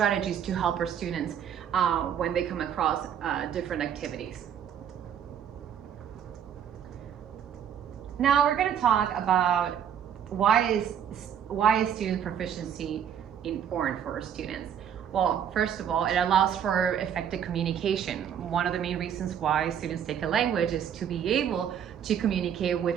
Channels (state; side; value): quieter; left; 8.8 dB